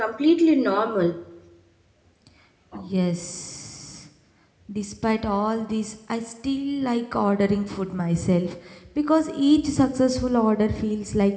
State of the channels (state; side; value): identical; both; correlation 1.00